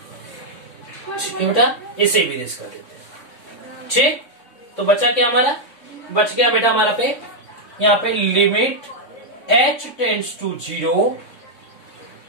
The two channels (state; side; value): late; right; 3.6 ms